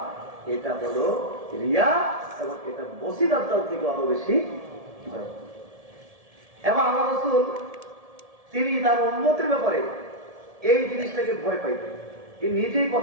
এটা হলো রিয়া। এবং এটা মসিহ দাজ্জাল থেকে আরো বেশি ভয়ঙ্কর। এবং আল্লাহ রাসূল তিনি তার উম্মতের ব্যাপারে এই জিনিসটাকে ভয় পাইতেন। তিনি নিজেই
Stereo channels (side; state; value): left; late; 1.7 ms